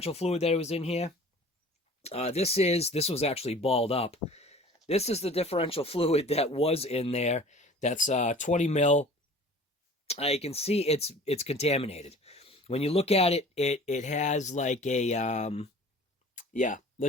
fluid that was in here. This was actually balled up. This is the differential fluid that was in there. That's 20 mil. You can see it's contaminated. When you look at it, it has like a yeah,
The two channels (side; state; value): both; normal; correlation 0.45